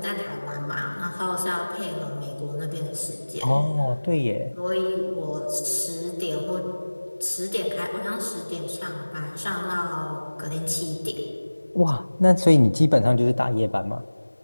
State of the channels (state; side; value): inverted; both; correlation -1.00